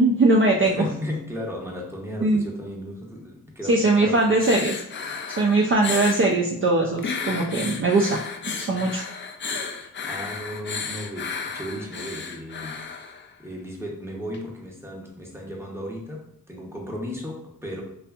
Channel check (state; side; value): normal; both; correlation 0.37